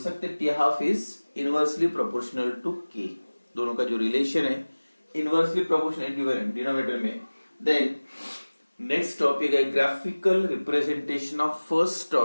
T half is inversely proportional to K. दोनों का जो रिलेशन है इनवर्सली प्रोपोर्शनल डिनोमिनेटर में। देन नेक्स्ट टॉपिक है graphical representation of first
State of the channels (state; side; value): inverted; both; correlation -1.00